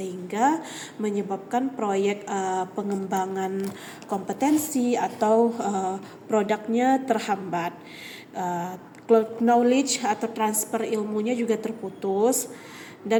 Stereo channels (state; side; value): identical; both; correlation 1.00